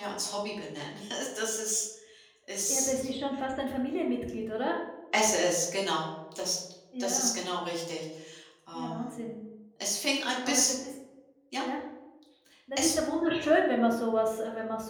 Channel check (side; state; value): both; identical; correlation 1.00